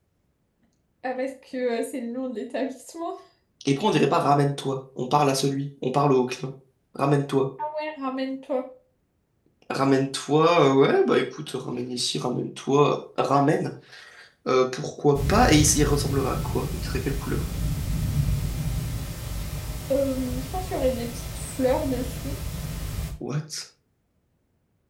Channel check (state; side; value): identical; both; correlation 1.00